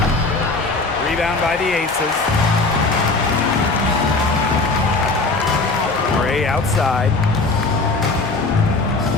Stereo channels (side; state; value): right; quieter; 3.5 dB